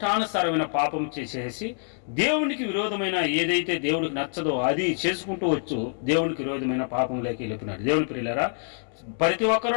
పాపం చేసేసి దేవునికి విరోధమైన ఏదైతే దేవుడికి నచ్చదో అది చేసుకుంటూ వచ్చు దేవునికి విరోధమైన పాపంలోకి వెళ్ళిపోయినాడు. దేవుని ప్రియులారా, ప్రతి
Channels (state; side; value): silent; right; 61 dB below the other